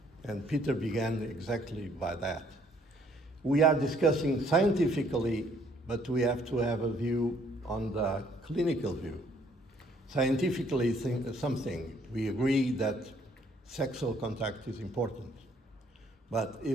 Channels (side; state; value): both; normal; correlation 0.63